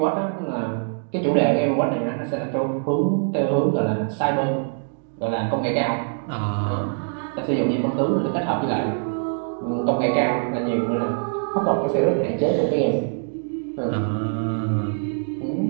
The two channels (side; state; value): left; silent; 63 dB below the other